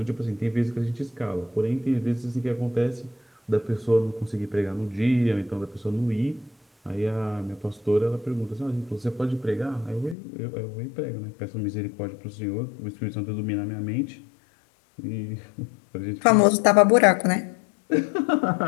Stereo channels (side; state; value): right; drops out; at 10.2 s